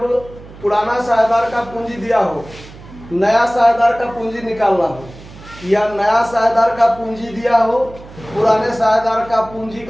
पुराना साझेदार का पूंजी दिया हो, नया साझेदार का पूंजी निकालना हो, या नया साझेदार का पूंजी दिया हो, पुराने साझेदार का पूंजी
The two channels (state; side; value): noise; right; hum, 18 dB below the sound